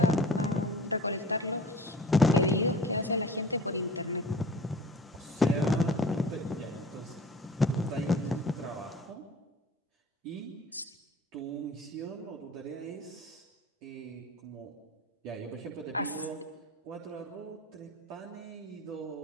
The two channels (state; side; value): normal; both; correlation 0.43